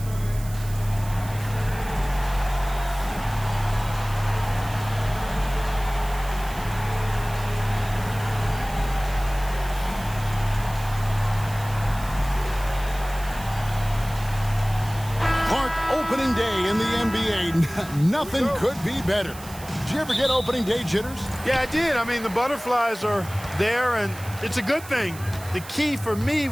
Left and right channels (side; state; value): right; noise; hiss, 16 dB below the sound